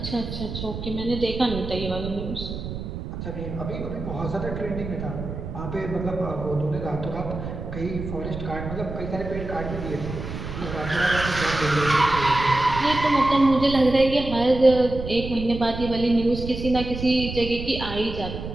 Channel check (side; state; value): right; noise; rumble, 7 dB below the sound